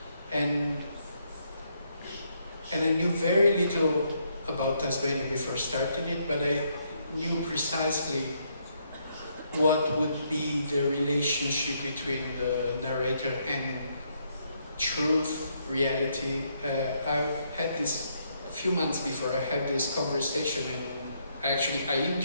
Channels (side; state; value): both; inverted; correlation -0.74